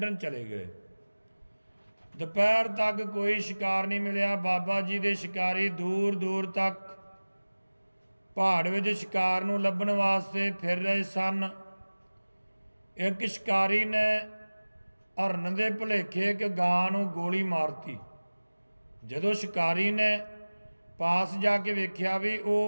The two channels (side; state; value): both; inverted; correlation -1.00